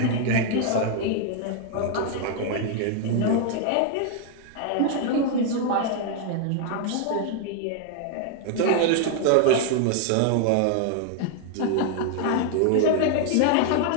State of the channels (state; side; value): different; both; correlation 0.00